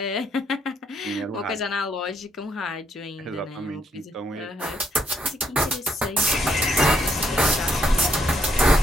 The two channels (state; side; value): normal; both; correlation 0.73